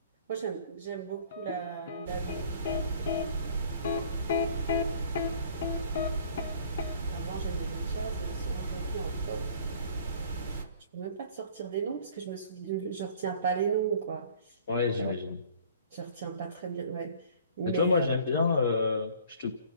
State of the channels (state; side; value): inverted; both; correlation -0.52